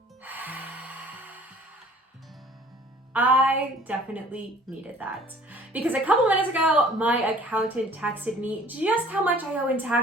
I definitely needed that because a couple minutes ago, my accountant texted me just how much I owe in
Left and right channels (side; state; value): both; normal; correlation 0.52